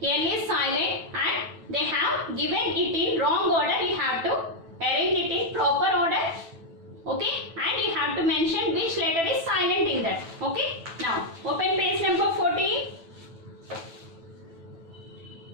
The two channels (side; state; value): left; late; 9.0 ms